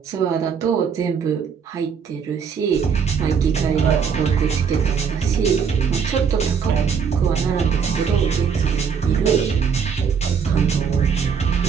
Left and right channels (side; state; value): left; quieter; 6.5 dB